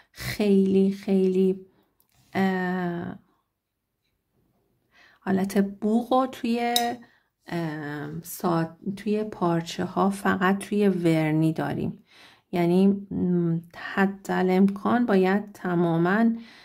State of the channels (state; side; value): identical; both; correlation 1.00